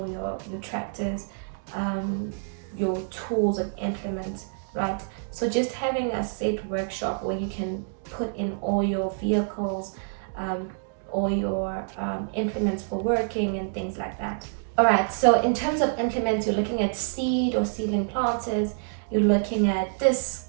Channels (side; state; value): left; silent; digital silence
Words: your tractors, your tools and implements, right? So just having a set workshop where you can put in all your vehicles, all your implements for working and things like that. All right, so in terms of implements, you're looking at seed or seedling planters, you're looking at